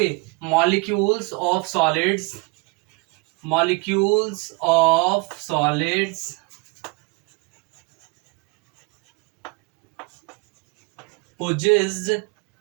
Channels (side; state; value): left; quieter; 29.1 dB